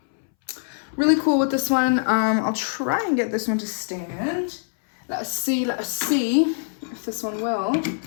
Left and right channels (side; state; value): right; silent; 63 dB below the other